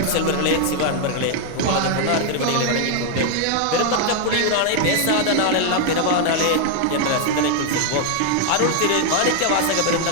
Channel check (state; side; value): different; both; correlation 0.00